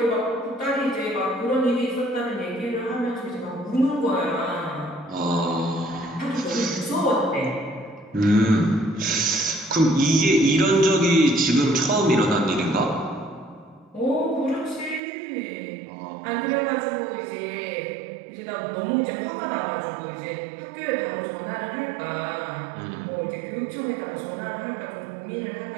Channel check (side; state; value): left; drops out; at 15.0 s